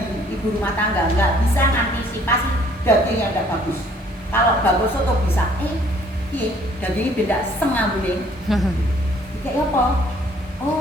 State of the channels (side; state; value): both; normal; correlation 0.60